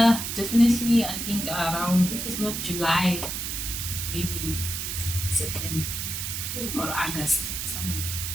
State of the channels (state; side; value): noise; right; hiss, 4 dB below the sound